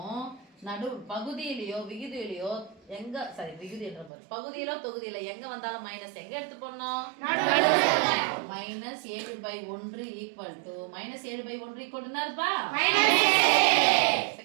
நடு பகுதியிலயோ விகுதியிலயோ எங்க சரி விகுதி என்ற பாரு பகுதியிலோ தொகுதியில எங்க வந்தாலும் மைனஸ் எங்க எடுத்து போடணும்? நடுவுல. Minus 7/1 equal to minus 7/1 equal to என்னதுப்பா? மைனஸ்.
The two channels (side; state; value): left; drops out; at 4.1 s